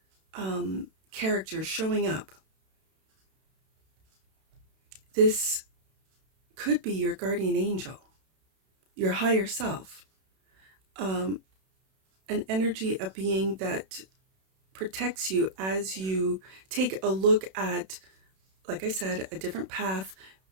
character showing up, this could be your guardian angel, your higher self, an energy, a being that protects you as you take a look at, like I said, a different path.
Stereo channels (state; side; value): late; left; 32 ms